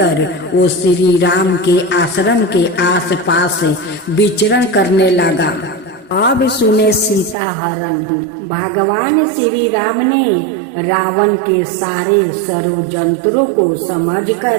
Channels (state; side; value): drops out; left; at 7.4 s